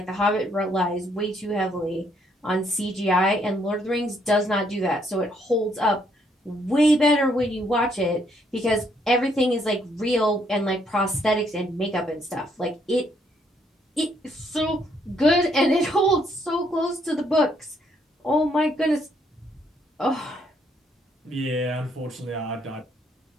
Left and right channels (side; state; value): both; normal; correlation 0.70